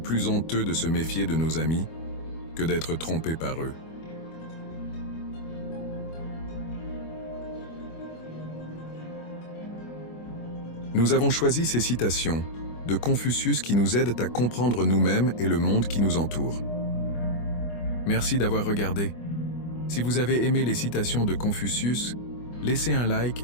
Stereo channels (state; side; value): late; right; 25 ms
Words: honteux de se méfier de nos amis que d'être trompé par eux. Nous avons choisi ces citations de Confucius qui nous aident à comprendre nous-mêmes et le monde qui nous entoure. Merci d'avoir regardé. Si vous avez aimé les citations de Confucius, laissez un like